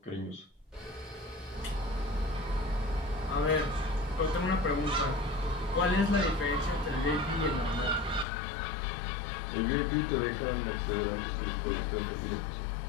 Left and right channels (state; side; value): drops out; right; at 8.2 s